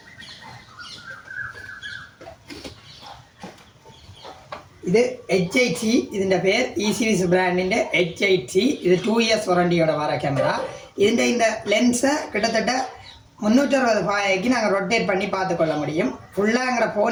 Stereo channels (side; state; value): both; identical; correlation 1.00